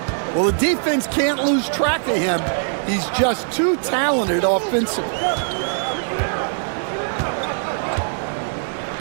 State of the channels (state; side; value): silent; left; 61 dB below the other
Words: Well, the defense can't lose track of him. He's just too talented offensively.